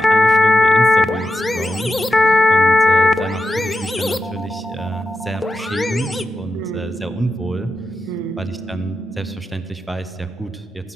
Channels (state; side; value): normal; both; correlation 0.89